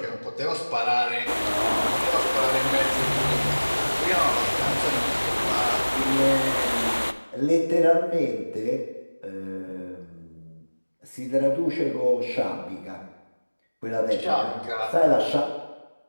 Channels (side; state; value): both; inverted; correlation -1.00